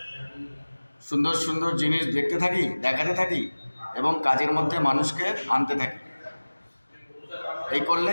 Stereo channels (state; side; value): inverted; both; correlation -1.00